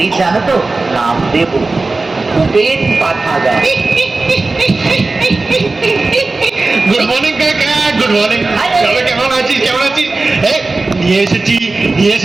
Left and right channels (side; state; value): left; quieter; 3.4 dB